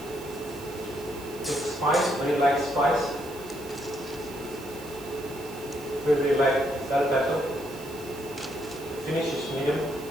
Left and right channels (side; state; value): right; noise; hiss, 18 dB below the sound